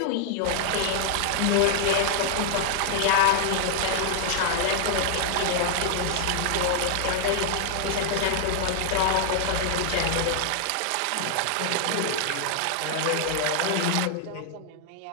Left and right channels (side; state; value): both; different; correlation -0.01